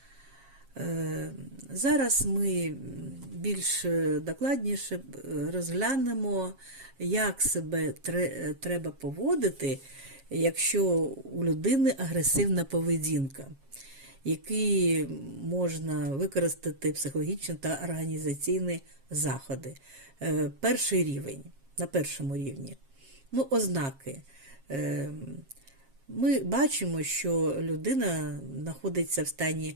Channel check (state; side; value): late; left; 7.4 ms